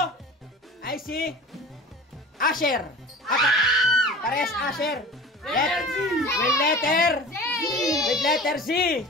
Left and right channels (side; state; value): both; normal; correlation 0.39